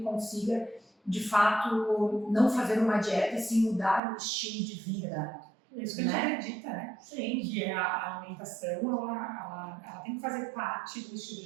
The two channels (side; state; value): left; drops out; at 4.0 s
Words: de fato, não fazer uma dieta e sim mudar o estilo de vida. Isso que a gente acredita, né? Sim. Que a alimentação, ela tem que fazer parte do estilo